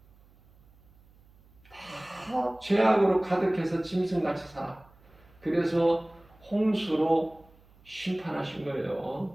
다 죄악으로 가득해서 짐승같이 살아. 그래서 홍수로 심판하신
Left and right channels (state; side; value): noise; right; hum, 28 dB below the sound